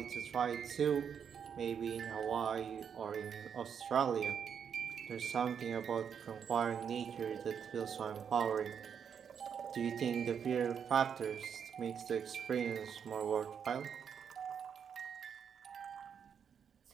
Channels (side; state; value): left; quieter; 7.5 dB